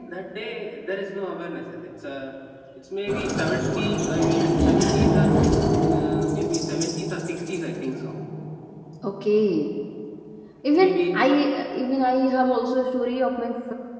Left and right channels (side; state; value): both; identical; correlation 1.00